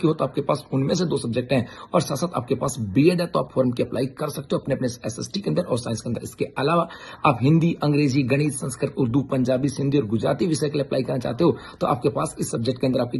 हो तो आपके पास उनमें से 2 सब्जेक्ट हैं और साथ साथ आपके पास बीएड है, तो आप फॉर्म की अप्लाई कर सकते हो अपने अपने एसएसटी के अंदर और साइंस के अंदर। इसके अलावा आप हिंदी, अंग्रेजी, गणित, संस्कृत, उर्दू, पंजाबी, सिंधी और गुजराती विषय के लिए अप्लाई करना चाहते हो तो आपके पास इस सब्जेक्ट के अंदर आपकी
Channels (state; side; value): identical; both; correlation 1.00